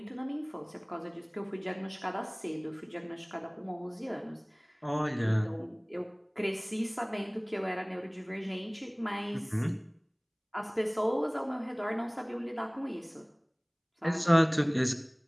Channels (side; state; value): both; identical; correlation 1.00